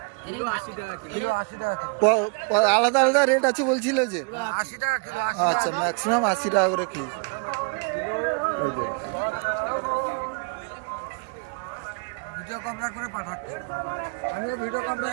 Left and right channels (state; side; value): quieter; left; 36.5 dB